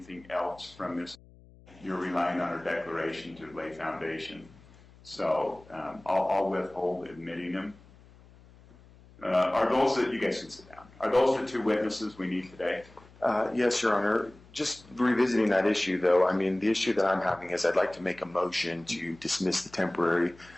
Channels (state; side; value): noise; left; hum, 24 dB below the sound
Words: else from this. You're relying on our declaration to lay foundation. So I'll withhold admitting them. Are those that, you guys can sit down, are those the two witnesses we need today? Yes, Your Honor. Just revisiting that issue, though, I mean, the issue that I'm having is I'd like to make a motion to dismiss the temporary